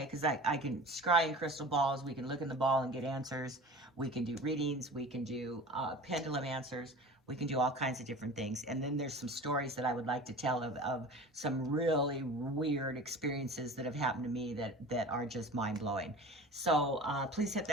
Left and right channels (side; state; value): both; normal; correlation 0.38